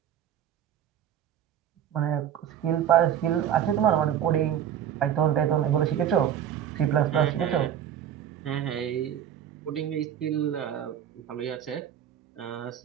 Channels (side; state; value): left; quieter; 9.9 dB